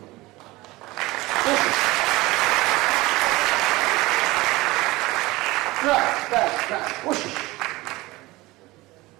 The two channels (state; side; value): quieter; left; 20.4 dB